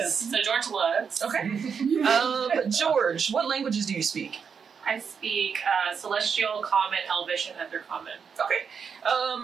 So George looks. Okay. George, what languages do you speak? I speak Celestial, Common, Elvish, and Under Common. Okay.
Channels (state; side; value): quieter; left; 6.4 dB